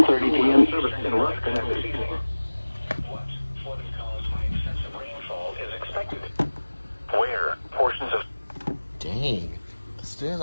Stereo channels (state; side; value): inverted; both; correlation -1.00